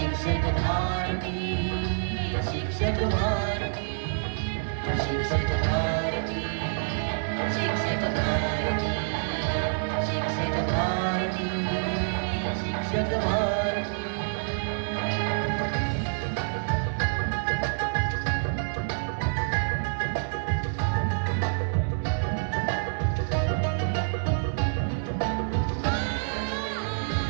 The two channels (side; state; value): left; silent; digital silence